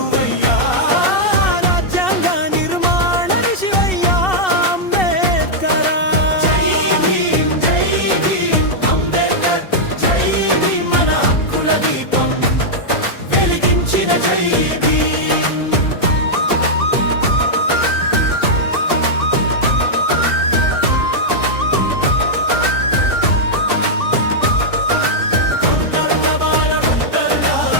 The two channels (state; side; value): late; right; 2.7 ms